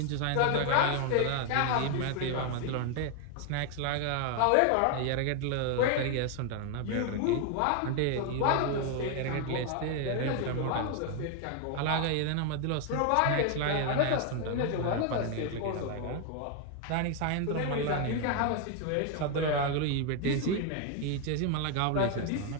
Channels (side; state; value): both; different; correlation 0.00